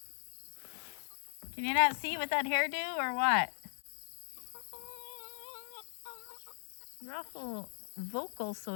Can you not see with that hairdo or what? You're awful vocal, so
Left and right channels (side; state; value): right; silent; 52 dB below the other